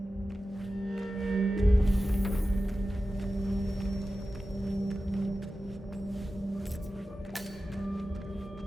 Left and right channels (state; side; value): normal; both; correlation 0.94